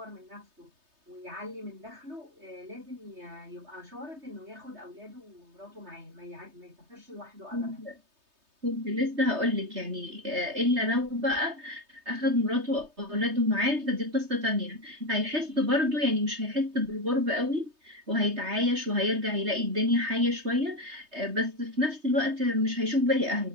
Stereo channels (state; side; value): late; left; 3.2 ms